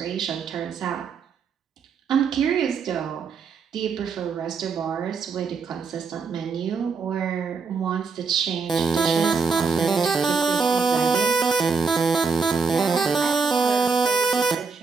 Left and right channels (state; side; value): quieter; left; 5.1 dB